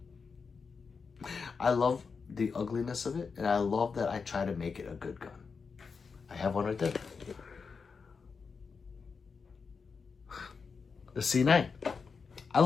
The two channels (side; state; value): right; quieter; 5.2 dB